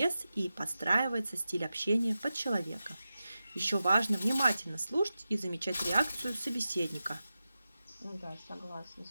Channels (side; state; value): both; inverted; correlation -0.93